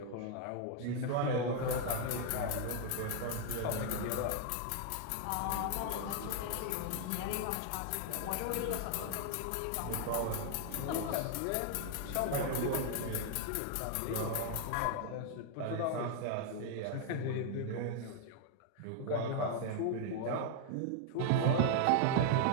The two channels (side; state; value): both; different; correlation 0.00